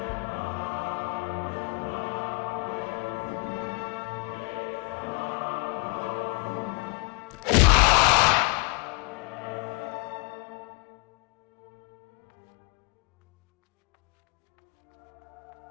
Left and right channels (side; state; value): right; quieter; 34.0 dB